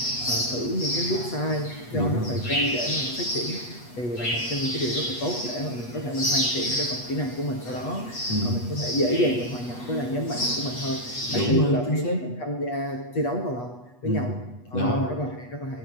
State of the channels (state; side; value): late; right; 8.2 ms